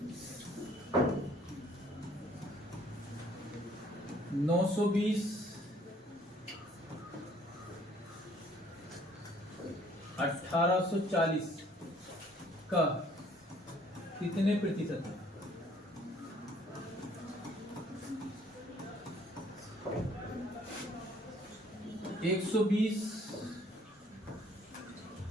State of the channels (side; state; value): both; normal; correlation 0.60